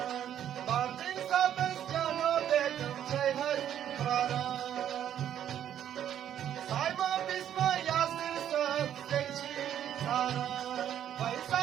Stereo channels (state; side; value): quieter; left; 10.3 dB